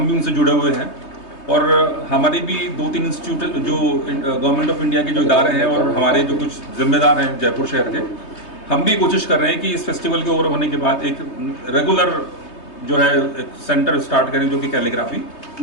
भी उनसे जुड़े हुए हैं, और हमारी भी 2-3 इंस्टीट्यूट जो गवर्नमेंट ऑफ इंडिया के जो इदारे हैं और हमारे जो कुछ जिम्मेदार हैं जयपुर शहर के, हम भी कोशिश कर रहे हैं कि इस फेस्टिवल के ओवर होने के बाद एक रेगुलर जो है एक सेंटर स्टार्ट करें जो कि कैलीग्राफी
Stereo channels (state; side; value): late; right; 3.2 ms